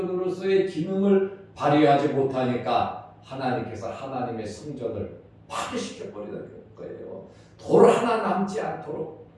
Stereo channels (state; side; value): identical; both; correlation 1.00